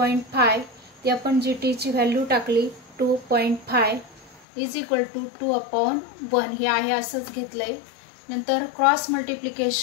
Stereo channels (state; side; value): drops out; right; at 4.4 s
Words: ती आपण GT ची व्हॅल्यू टाकली 2.5 इज इक्वल टू 2/1. हे आहे असंच घेतलंय. नंतर cross